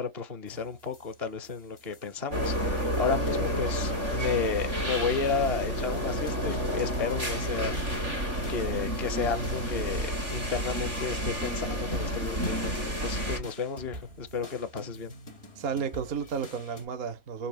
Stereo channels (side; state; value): left; late; 3.5 ms